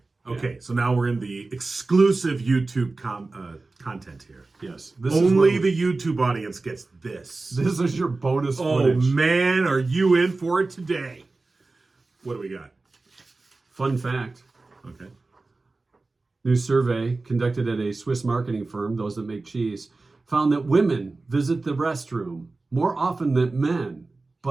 Okay. So now we're in the exclusive YouTube content here. Yes. Only the YouTube audience gets this. This is your bonus Oh footage. man, are you in for it today? What do we got? Fun fact. Okay. New survey conducted at a Swiss marketing firm, those that make cheese, found that women visit the restroom more often than men,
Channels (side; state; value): left; quieter; 3.5 dB